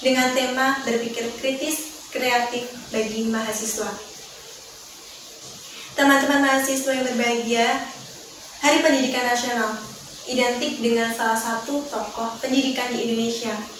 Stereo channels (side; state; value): both; identical; correlation 1.00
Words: tema berpikir kritis kreatif bagi mahasiswa. Teman-teman mahasiswa yang berbahagia, Hari Pendidikan Nasional identik dengan salah satu tokoh pendidikan di Indonesia,